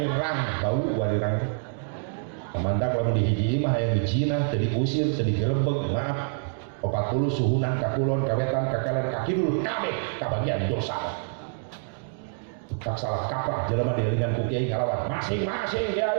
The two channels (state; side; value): silent; left; digital silence